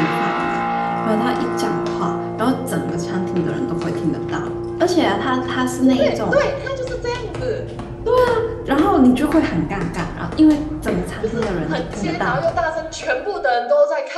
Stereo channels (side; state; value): both; identical; correlation 1.00